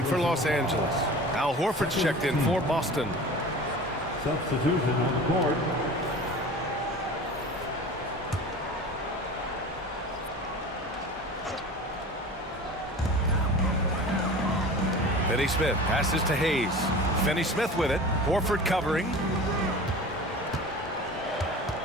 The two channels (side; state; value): both; normal; correlation 0.37